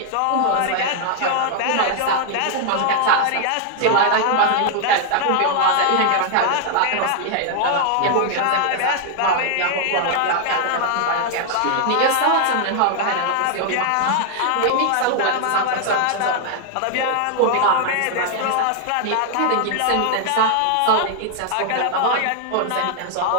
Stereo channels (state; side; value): different; both; correlation 0.00